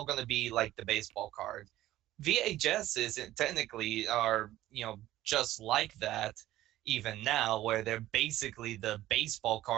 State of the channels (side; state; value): left; quieter; 14.8 dB